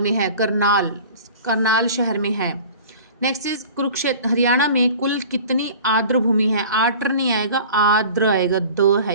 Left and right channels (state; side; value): inverted; both; correlation -0.41